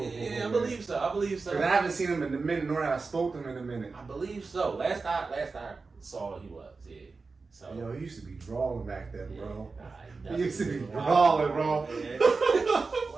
I believe so. Because I haven't seen him in a minute, nor have I spoke to him in a minute. I believe so. Last I saw, he was. Yeah. So. Yo, he used to be drawing back then, bro. He used to be drawing, bro.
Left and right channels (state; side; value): quieter; left; 4.2 dB